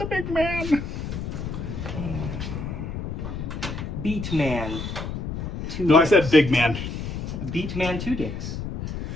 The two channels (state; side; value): noise; left; rumble, 5 dB below the sound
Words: big man. Beat Man. No, I said big man. Beat Man 2 dicks.